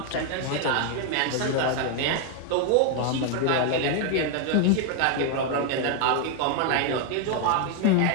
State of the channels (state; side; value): different; both; correlation 0.01